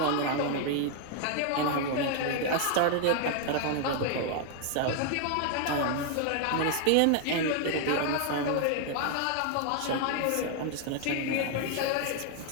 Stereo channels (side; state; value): both; different; correlation 0.00